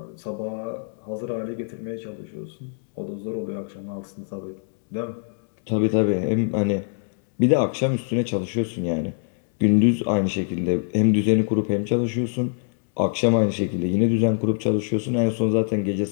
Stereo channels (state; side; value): silent; right; 63 dB below the other